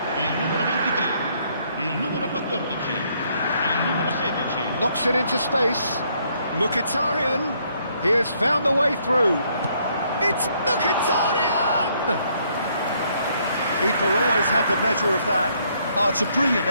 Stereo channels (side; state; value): both; inverted; correlation -0.69